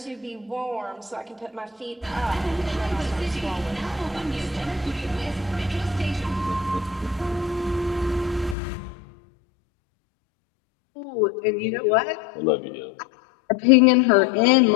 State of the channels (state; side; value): drops out; right; at 8.6 s